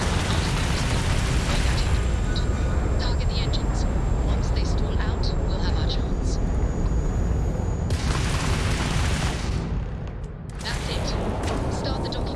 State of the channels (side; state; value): both; identical; correlation 1.00